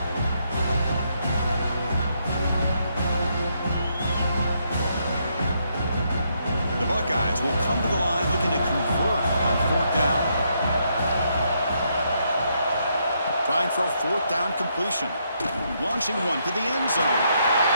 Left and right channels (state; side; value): inverted; both; correlation -0.76